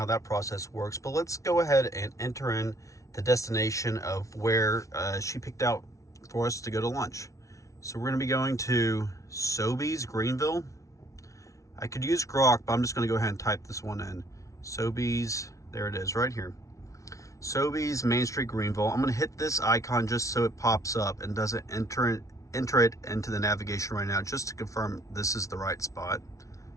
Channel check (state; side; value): late; right; 0.15 ms